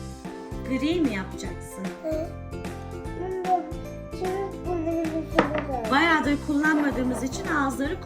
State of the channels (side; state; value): both; identical; correlation 1.00